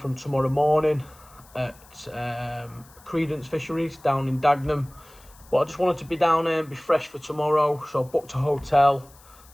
tomorrow morning at Creedence Fisheries down in Dagenham. But I just wanted to be down there and be fresh for tomorrow, so I booked a hotel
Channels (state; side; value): noise; left; hiss, 26 dB below the sound